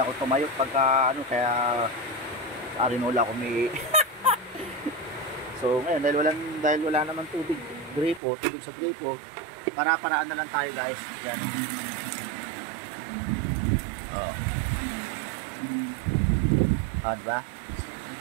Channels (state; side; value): drops out; left; at 8.2 s